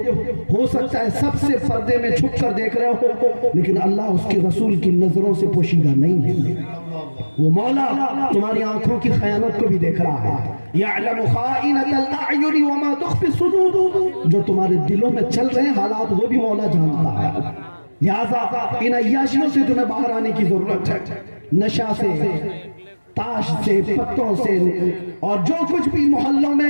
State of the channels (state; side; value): inverted; both; correlation -1.00